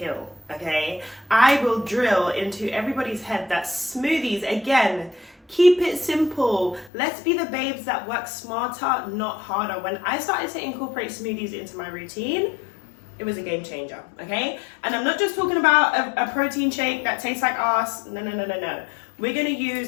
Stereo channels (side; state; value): right; drops out; at 6.9 s